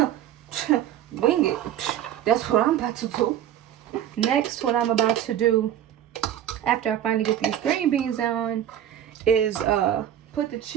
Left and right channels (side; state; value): left; quieter; 10.8 dB